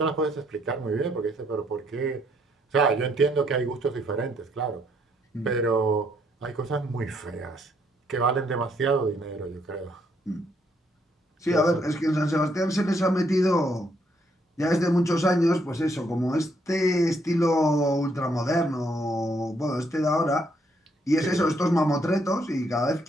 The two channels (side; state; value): both; normal; correlation 0.72